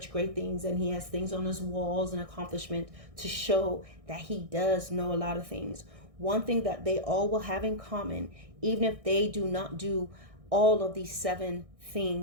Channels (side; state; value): left; late; 1.6 ms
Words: great things, and he has things on his walls and accomplishment to show that he does know a lot of things. One thing that they all will have in common, even if they do not do all of these 7